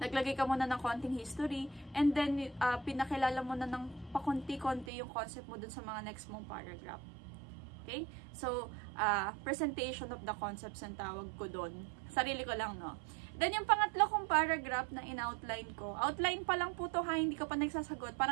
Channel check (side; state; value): left; drops out; at 4.9 s